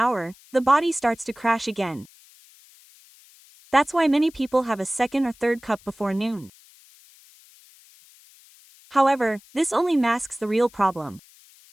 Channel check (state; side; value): noise; left; hiss, 26 dB below the sound